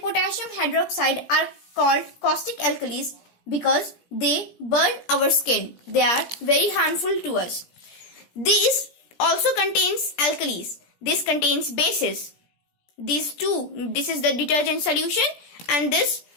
potassium hydroxide are called caustic alkalis because they burn our skin. They are very harmful to us. These also contains alkalis. This contains bases. These two, this is the detergent solution and this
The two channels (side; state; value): right; late; 17 ms